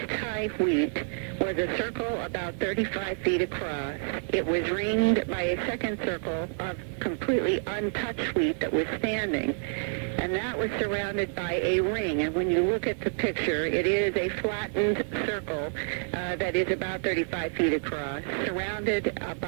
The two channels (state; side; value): silent; left; 56 dB below the other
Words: wheat was a circle about 35 feet across. It was ringed by a second circle of completely untouched wheat that was standing, and that was surrounded by a ring. And when you look at the picture, it is a flattened circle that is about 35 feet across, surrounded